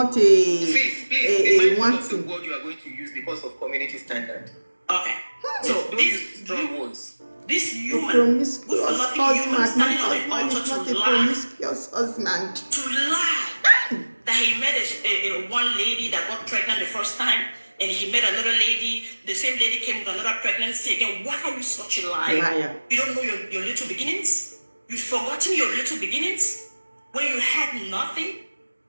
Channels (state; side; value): inverted; both; correlation -1.00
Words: a wanting. Word you are going to use because of community standard. Okay. So these strong words. This human promiscuous husband. My husband is not a promiscuous husband. To lie. That he met a one lady that got pregnant the first time, and he met another lady. The same lady came with another pregnancy again. Why are you such a liar? You don't know your little beginnings? You've forgotten your little beginnings? When you had nothing?